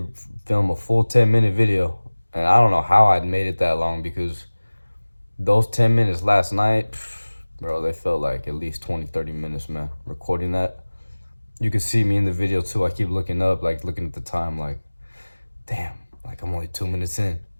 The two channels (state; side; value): inverted; both; correlation -1.00